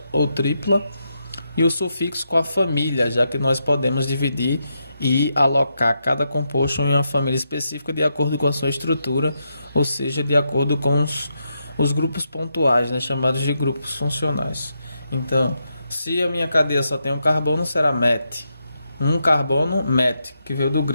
ou tripla, e o sufixo com a família, já que nós podemos dividir e alocar cada composto em uma família específica de acordo com a sua estrutura, ou seja, de acordo com os grupos pontuais, né, chamados de grupos funcionais. Então, se a minha cadeia só tem um carbono, será met. Um carbono, met, que veio do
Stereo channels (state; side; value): inverted; both; correlation -0.83